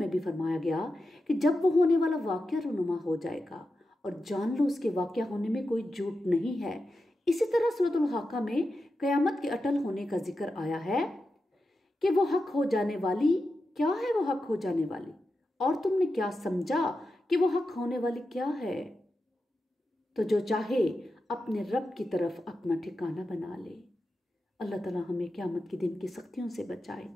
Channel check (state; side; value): normal; both; correlation 0.90